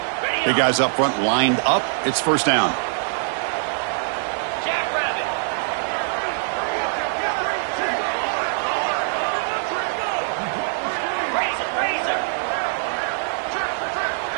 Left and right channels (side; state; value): left; silent; 60 dB below the other